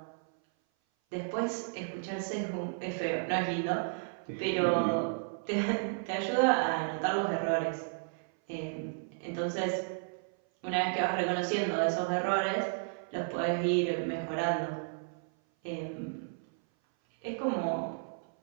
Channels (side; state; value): left; silent; 56 dB below the other